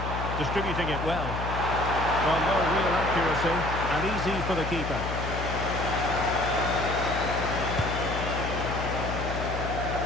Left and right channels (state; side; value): noise; left; hum, 4 dB below the sound